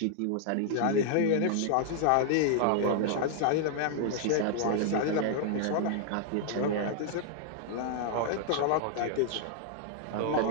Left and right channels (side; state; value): both; different; correlation 0.00